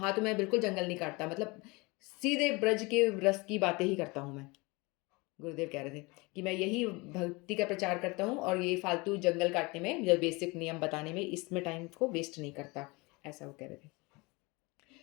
तो मैं बिल्कुल जंगल नहीं काटता, मतलब सीधे ब्रज के रस की बातें ही करता हूँ मैं। गुरुदेव कह रहे थे कि मैं यही भक्ति का प्रचार करता हूँ, और ये फालतू जंगल काटने में या बेसिक नियम बताने में, इसमें टाइम को वेस्ट नहीं करता, ऐसा वो कह रहे थे।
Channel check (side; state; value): right; quieter; 25.6 dB